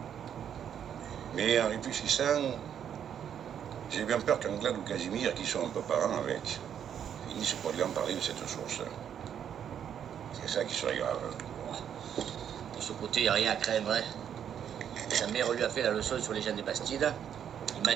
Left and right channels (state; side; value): quieter; left; 8.9 dB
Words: Mais en réfléchissant, j'ai bien peur qu'Anglade ou Casimir, qui sont un peu parents avec, finissent par lui en parler de cette source. C'est ça qui serait grave. De ce côté, il n'y a rien à craindre. Hein. Sa mère lui a fait la leçon sur les gens des Bastides. Il m'a